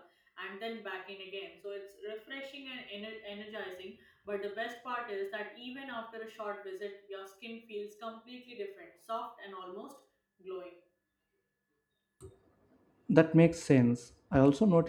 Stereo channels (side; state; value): both; identical; correlation 1.00